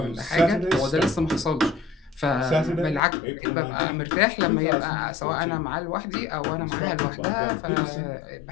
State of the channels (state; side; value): drops out; right; at 3.0 s